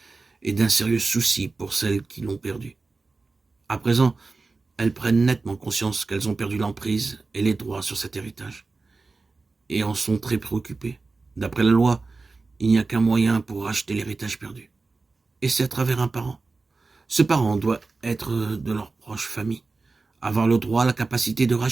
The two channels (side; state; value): left; quieter; 3.8 dB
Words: et d'un sérieux souci pour celles qui l'ont perdu. À présent, elles prennent nettement conscience qu'elles ont perdu l'emprise et les droits sur cet héritage, et en sont très préoccupées. D'après la loi, il n'y a qu'un moyen pour racheter l'héritage perdu, et c'est à travers un parent. Ce parent doit être de leur proche famille, avoir le droit, la capacité de